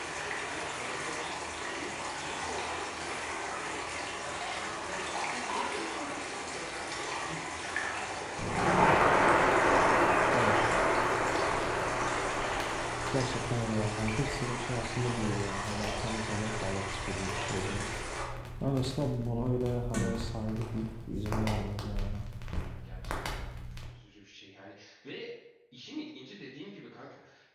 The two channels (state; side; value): identical; both; correlation 1.00